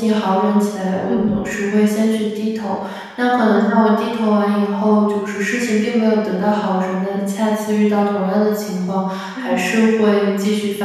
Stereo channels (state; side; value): identical; both; correlation 1.00